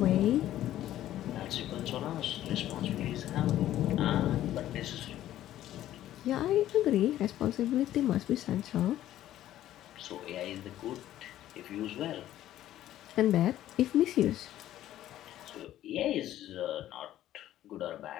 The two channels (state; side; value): quieter; right; 13.1 dB